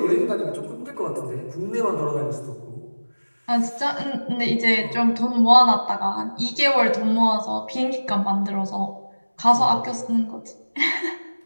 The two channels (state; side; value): inverted; both; correlation -1.00